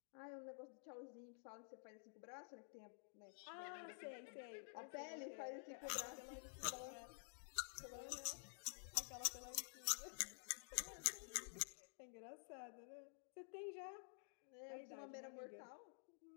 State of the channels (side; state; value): right; silent; digital silence